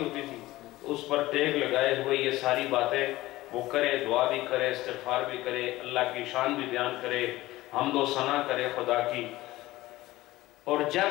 تھی، اس پر ٹیک لگائے ہوئے یہ ساری باتیں وہ کرے، دعا بھی کرے، استغفار بھی کرے، اللہ کی شان بھی بیان کرے، حمد و ثنا کرے خدا کی. اور جب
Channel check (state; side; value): quieter; right; 17.5 dB